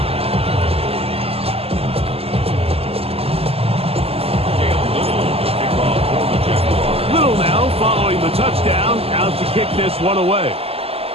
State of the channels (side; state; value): left; late; 0.29 ms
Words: Little now following the touchdown, out to kick this one away.